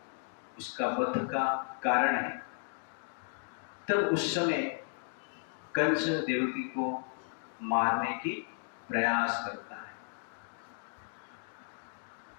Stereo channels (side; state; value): right; silent; 55 dB below the other